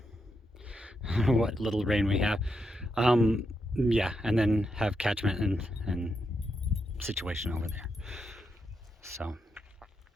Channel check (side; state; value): both; normal; correlation 0.83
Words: what little rain we have. Yeah, and then have catchment and situation over there. So,